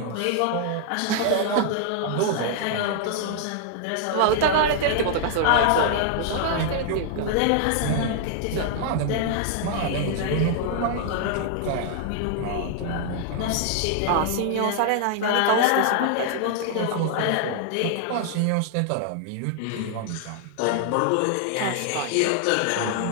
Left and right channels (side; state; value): both; different; correlation 0.00